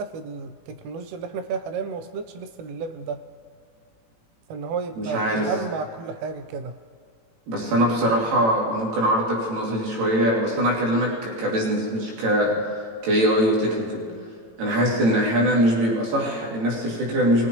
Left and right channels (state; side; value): late; left; 18 ms